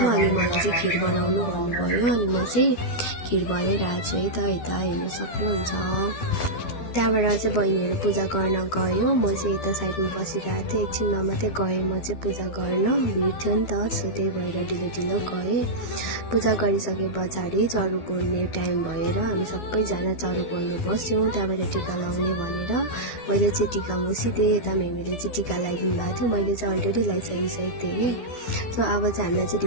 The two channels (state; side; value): late; right; 12 ms